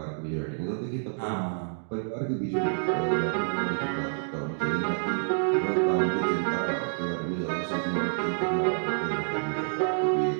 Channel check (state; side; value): silent; left; digital silence